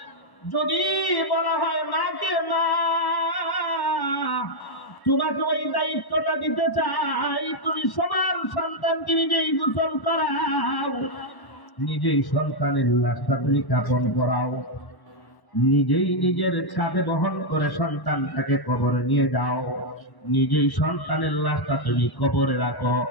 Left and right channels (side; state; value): right; late; 1.1 ms